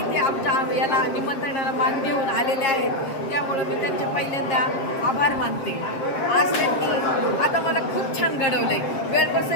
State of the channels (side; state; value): right; late; 7.5 ms